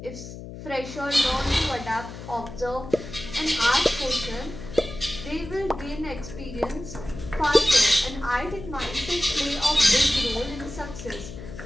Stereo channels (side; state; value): left; noise; hum, 12 dB below the sound